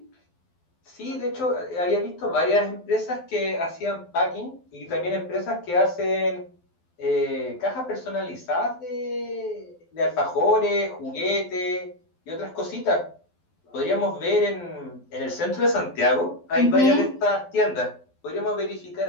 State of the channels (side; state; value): right; late; 12 ms